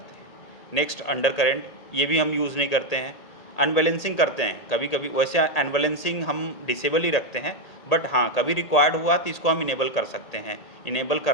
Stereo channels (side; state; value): right; late; 1.8 ms